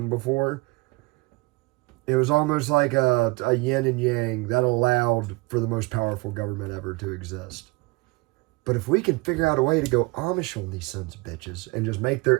before. It was almost like a yin and yang that allowed for the most powerful government ever to exist. But if we can figure out a way to go Amish on these sons of bitches and just make their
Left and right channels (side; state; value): left; quieter; 25.0 dB